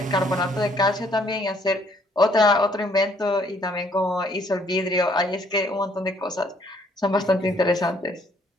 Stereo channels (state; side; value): normal; both; correlation 0.65